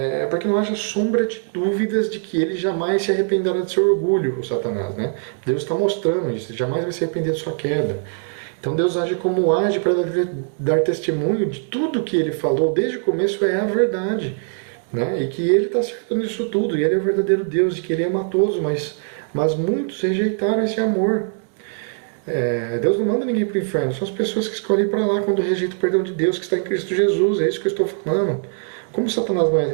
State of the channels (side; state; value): left; silent; 59 dB below the other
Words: porque não haja sombra de dúvidas de que ele jamais se arrependerá de seu orgulho, o Satanás, né? Deus está mostrando isso, ele jamais vai se arrepender de sua queda. Então Deus age como age para dar testemunho de tudo que ele falou desde o começo é a verdade, né? E que ele está certo nisso tudo, e ele é o verdadeiro Deus, e que ele ama a todos, mas muitos rejeitaram esse amor. Deus não manda ninguém para o inferno, são as pessoas que escolhem para lá quando rejeitam o perdão de Deus que está em Cristo Jesus, é isso que eu estou falando. Como Satanás